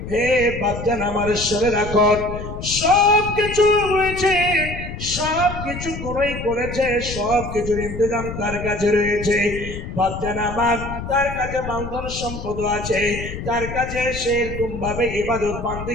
হে বাপজান আমার, শুনে রাখো, সব কিছু রয়েছে, সব কিছু কোনই করেছে, সব কিছুর ইন্তজাম তার কাছে রয়েছে। বাপজান আমার, তার কাছে মালধন সম্পদ আছে, তার কাছে সেরকম ভাবে ইবাদত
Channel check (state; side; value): noise; left; rumble, 8 dB below the sound